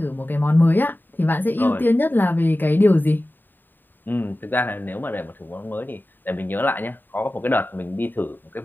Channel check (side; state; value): right; late; 0.092 ms